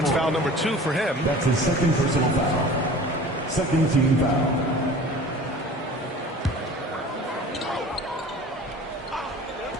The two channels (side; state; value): both; normal; correlation 0.42